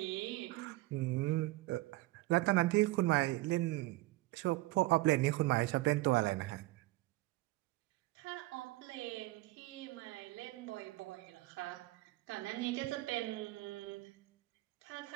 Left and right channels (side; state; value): left; quieter; 19.3 dB